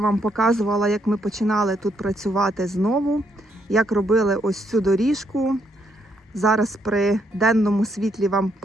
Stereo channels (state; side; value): normal; both; correlation 0.74